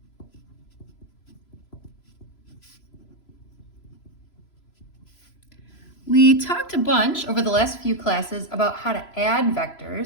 We talked a bunch over the last few classes about how to add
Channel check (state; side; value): late; right; 3.0 ms